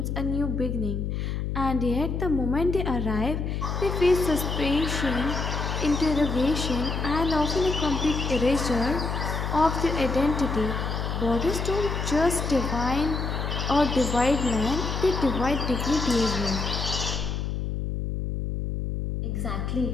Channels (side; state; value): left; noise; hum, 2 dB below the sound